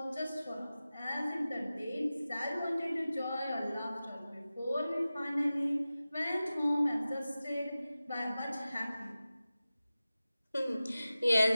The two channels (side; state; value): both; inverted; correlation -0.95